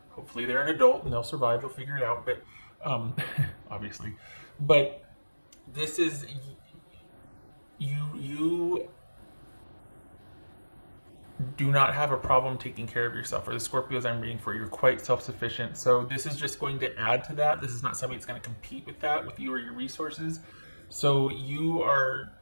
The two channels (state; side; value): inverted; both; correlation -1.00